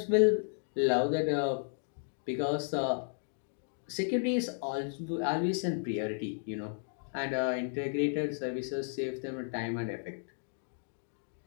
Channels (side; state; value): right; silent; digital silence